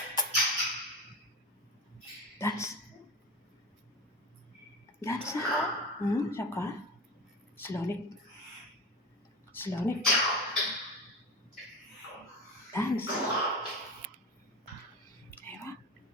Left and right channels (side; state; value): both; normal; correlation 0.26